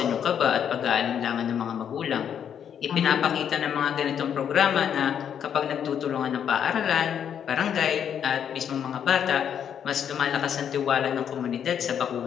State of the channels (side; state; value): right; quieter; 8.6 dB